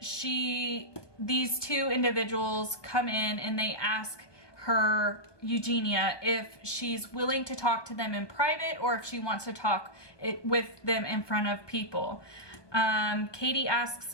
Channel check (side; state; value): right; late; 1.2 ms